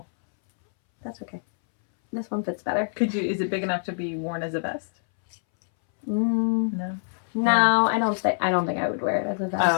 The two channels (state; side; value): silent; right; 62 dB below the other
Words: That's okay. This one fits better. Is it big enough to be worn as a vest? No. No, I don't think I would wear it as a vest.